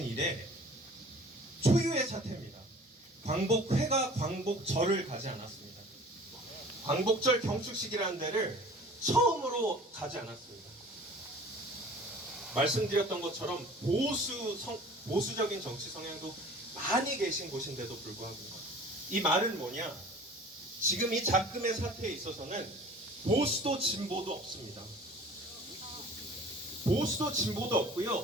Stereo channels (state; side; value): normal; both; correlation 0.46